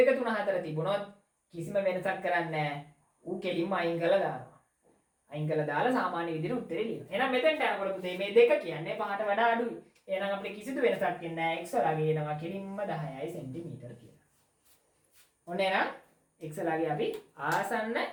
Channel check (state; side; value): identical; both; correlation 1.00